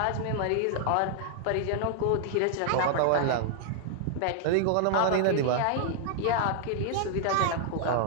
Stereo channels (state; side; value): different; both; correlation 0.00